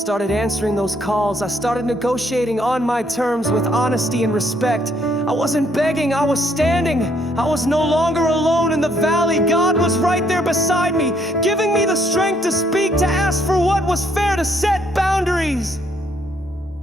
answering those calls. I started negotiating on my terms with honesty and respect. I wasn't begging, I was standing. I was no longer alone in the valley. God was right there beside me, giving me the strength to speak, to ask for what was fair, to set boundaries.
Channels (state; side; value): normal; both; correlation 0.69